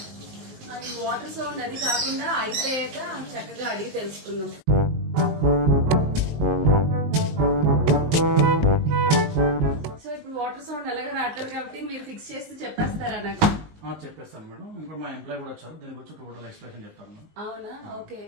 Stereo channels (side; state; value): left; late; 19 ms